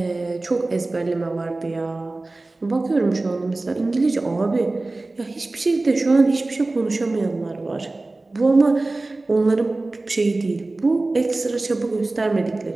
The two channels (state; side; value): quieter; left; 3.1 dB